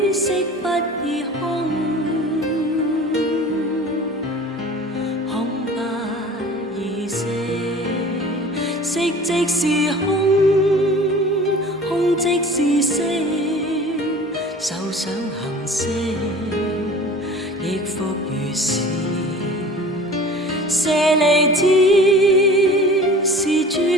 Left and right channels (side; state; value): both; normal; correlation 0.43